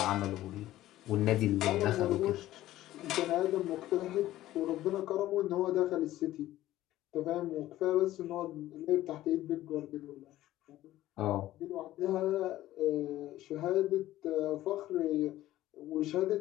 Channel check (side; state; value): right; quieter; 14.8 dB